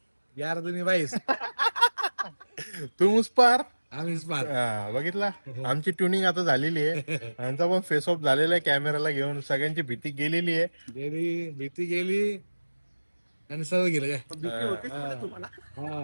यार तुम्ही बाईस तू मुस पार आम्हीच पार. बघितला आमची ट्युनिंग आता झालेली आहे. यांचा पण फेस ऑफ झालेला आहे कॅमेराला घेऊन. सगळ्यांची भीती गेलेली आहे. भीती गेली आणि सर्व गेलं काय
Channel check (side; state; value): both; inverted; correlation -1.00